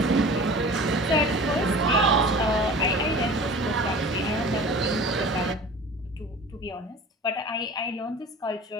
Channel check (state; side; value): normal; both; correlation 0.40